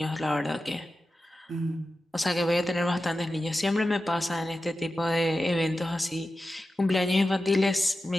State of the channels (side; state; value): both; normal; correlation 0.93